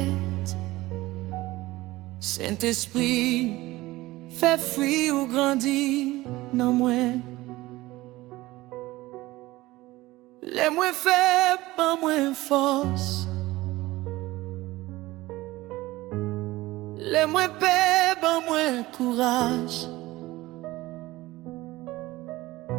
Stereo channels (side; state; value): left; quieter; 18.6 dB